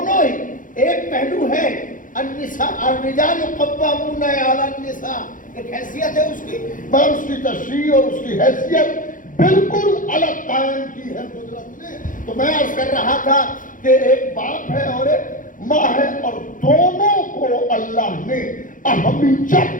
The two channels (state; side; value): late; right; 0.39 ms